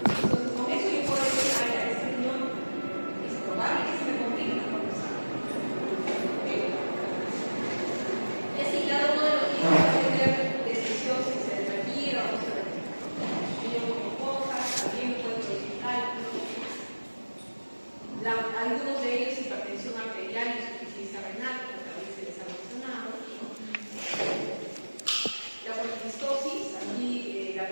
Entonces, con eso yo puedo decir, ay, a este riñón es probable que se me complique la conversación. ¿Ok? Y así cada uno de los niños va a tener decisión si se retira o no se retira. Niños con cosas, también pueden producir cálculos. Algunos de ellos hipertensión arterial y insuficiencia renal, como también se les ha mencionado. La poliquistosis, aquí la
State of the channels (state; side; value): inverted; both; correlation -1.00